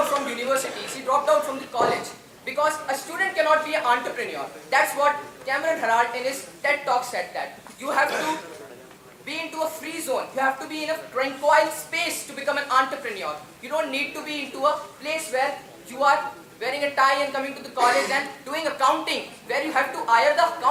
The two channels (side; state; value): both; identical; correlation 1.00